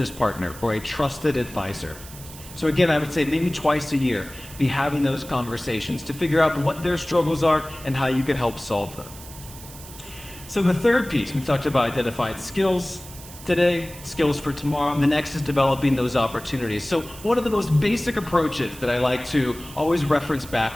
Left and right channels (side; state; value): right; noise; hiss, 16 dB below the sound